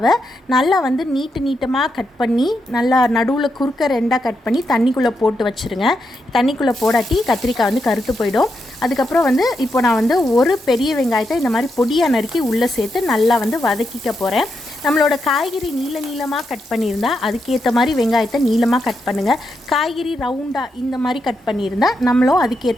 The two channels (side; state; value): both; normal; correlation 0.83